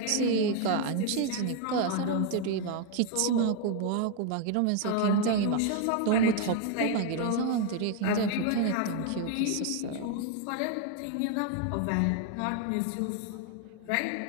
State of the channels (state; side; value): different; both; correlation 0.00